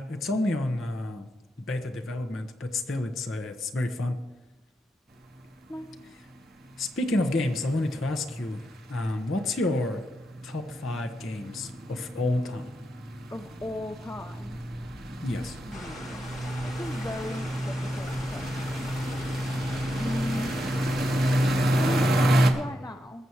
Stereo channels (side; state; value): both; normal; correlation 0.84